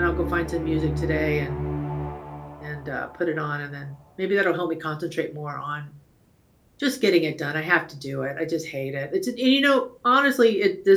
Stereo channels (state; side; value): identical; both; correlation 1.00